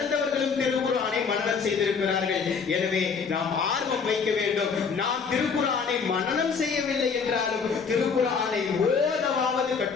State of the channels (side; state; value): right; quieter; 5.7 dB